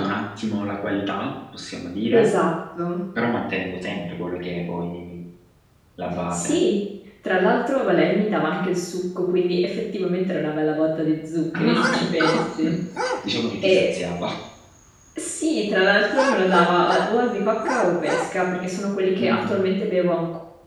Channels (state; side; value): identical; both; correlation 1.00